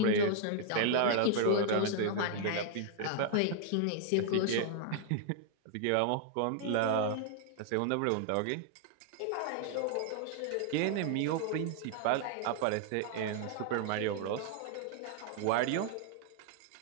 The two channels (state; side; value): different; both; correlation 0.00